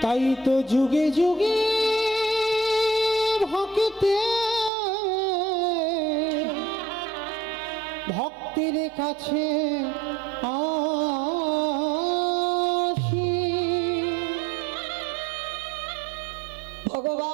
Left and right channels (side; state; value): left; drops out; at 4.7 s